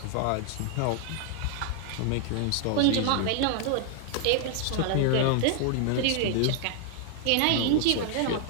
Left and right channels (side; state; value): both; different; correlation 0.00